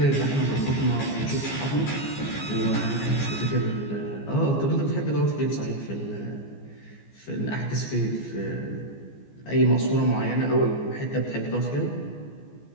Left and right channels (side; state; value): right; late; 14 ms